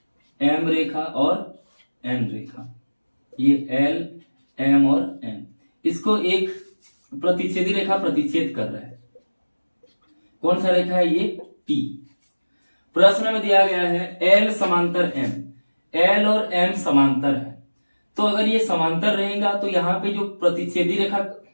M रेखा और N रेखा। ये L, M और N, इसको एक प्रतिच्छेदी रेखा प्रतिच्छेद कर रहा है। कौन सा रेखा है ये, T। प्रश्न में दिया गया है L समांतर M, L और M समांतर है। तो अगर ये समांतर रहेगा तो यहाँ पे जो प्रतिच्छेदी रेखा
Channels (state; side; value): inverted; both; correlation -1.00